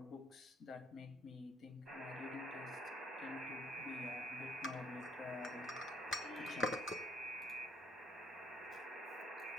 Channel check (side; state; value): both; normal; correlation 0.64